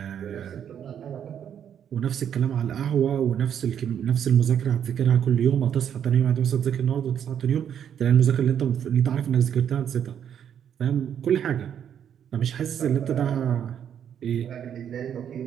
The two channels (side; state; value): left; quieter; 8.9 dB